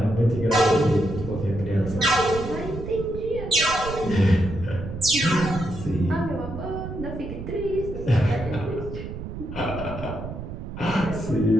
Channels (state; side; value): noise; right; rumble, 9 dB below the sound